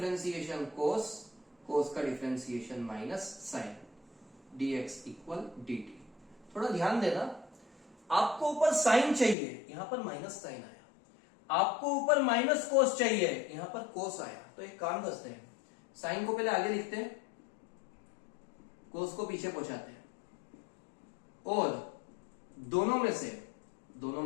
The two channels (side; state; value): right; drops out; at 9.3 s